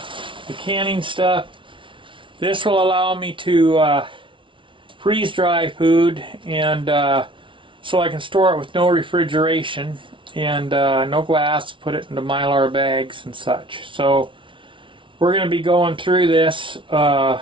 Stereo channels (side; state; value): left; late; 0.25 ms